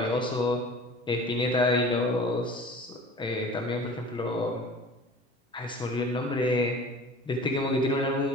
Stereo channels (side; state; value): both; normal; correlation 0.43